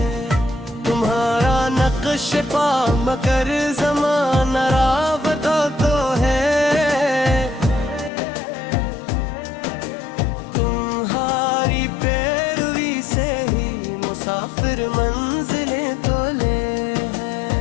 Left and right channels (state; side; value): drops out; right; at 8.1 s